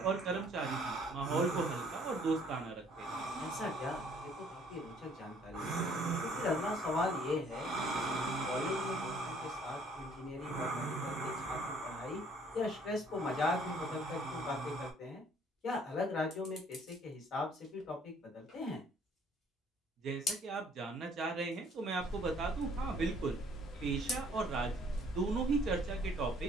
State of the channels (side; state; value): both; normal; correlation 0.60